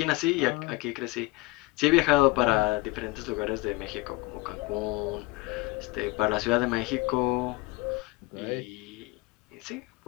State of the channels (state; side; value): quieter; right; 22.1 dB